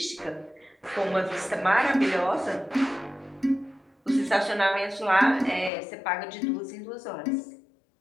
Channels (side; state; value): right; drops out; at 5.7 s